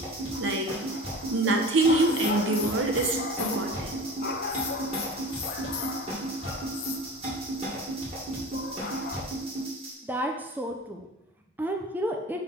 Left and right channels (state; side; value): normal; both; correlation 0.37